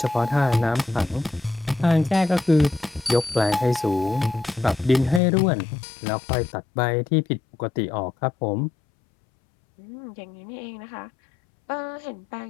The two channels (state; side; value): drops out; right; at 5.2 s